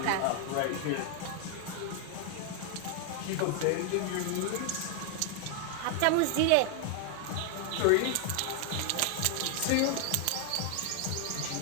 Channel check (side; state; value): both; different; correlation 0.00